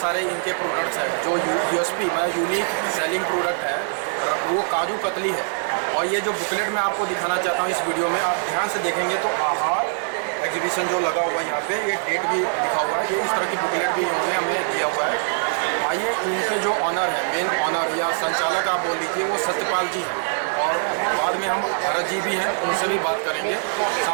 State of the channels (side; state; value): left; silent; 63 dB below the other